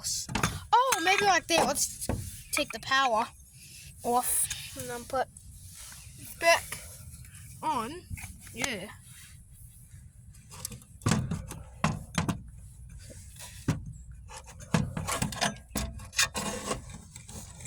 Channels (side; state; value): both; identical; correlation 1.00